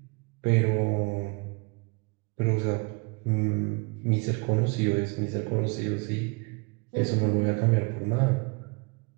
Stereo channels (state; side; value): quieter; left; 31.2 dB